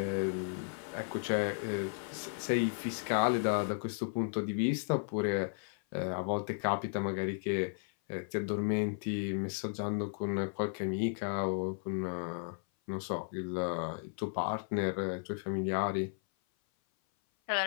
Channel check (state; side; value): silent; right; 55 dB below the other